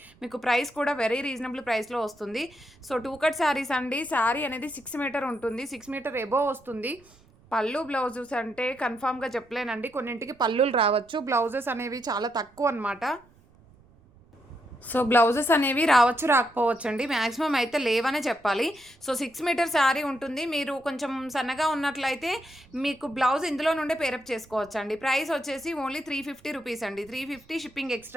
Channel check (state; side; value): noise; right; rumble, 29 dB below the sound